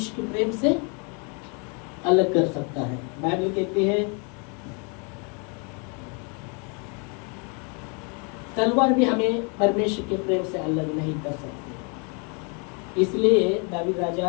के प्रेम से अलग कर सकता है। बाइबल कहती है तलवार भी हमें परमेश्वर के प्रेम से अलग नहीं कर सकती। इसलिए दावीद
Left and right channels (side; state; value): right; quieter; 35.3 dB